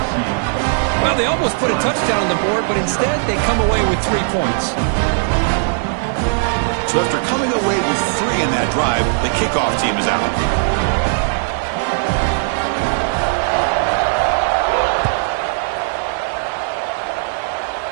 Well, they almost put a touchdown on the board, but instead they come away with 3 points. So after coming away with 3 in that drive, the kickoff team is out.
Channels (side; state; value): left; silent; 66 dB below the other